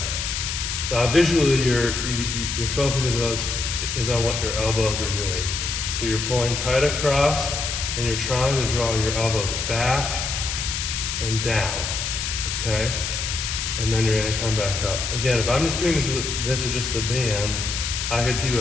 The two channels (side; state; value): left; noise; hiss, 3 dB below the sound